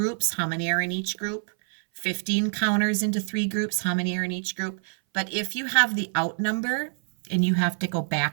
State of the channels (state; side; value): silent; left; 60 dB below the other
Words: How many are in each group? 15 counters into 3 groups. How many are in each group? But if you have the out number and you have to go